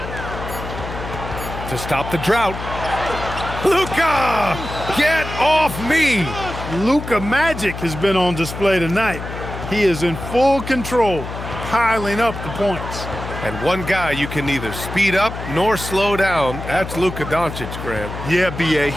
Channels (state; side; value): noise; left; hum, 8 dB below the sound